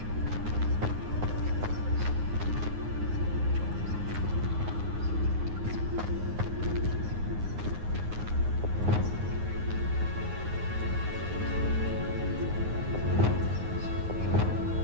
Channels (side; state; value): left; late; 9.6 ms